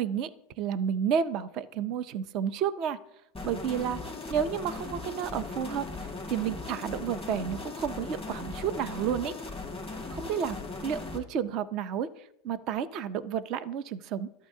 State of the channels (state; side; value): quieter; left; 6.1 dB